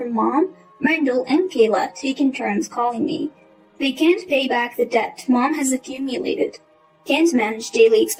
Mom, Randall, and Kayla taking turns calling me. They can't pay back the debt Mom has accumulated, can't manage daily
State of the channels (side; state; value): both; identical; correlation 1.00